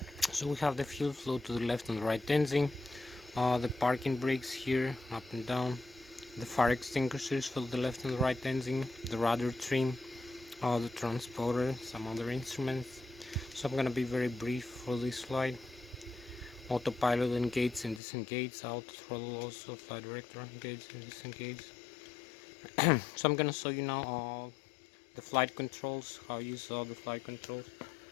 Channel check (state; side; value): drops out; right; at 18.0 s